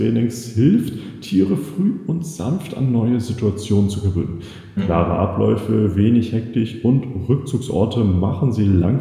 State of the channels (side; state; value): both; identical; correlation 1.00